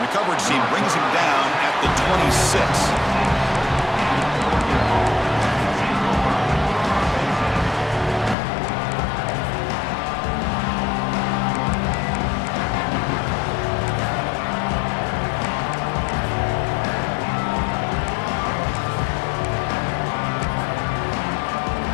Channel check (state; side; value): drops out; right; at 8.3 s